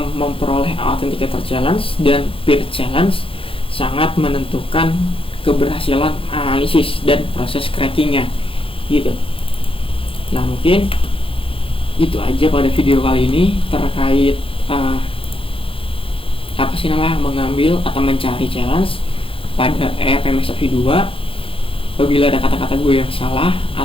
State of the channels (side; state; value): right; late; 0.26 ms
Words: memperoleh authenticator challenge dan peer challenge sangat menentukan keberhasilan analisis dan proses crackingnya gitu. Nah, mungkin itu aja pada video kali ini terkait mengambil atau mencari challenge pada ERMSAV 2. Apabila ada kata-kata gue yang salah